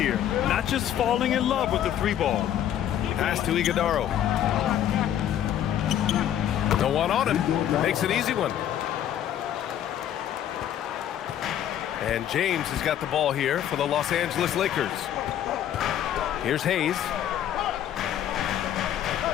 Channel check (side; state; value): right; quieter; 10.8 dB